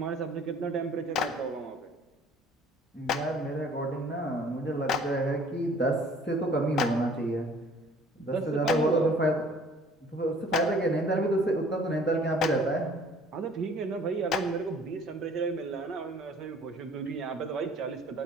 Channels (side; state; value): both; normal; correlation 0.53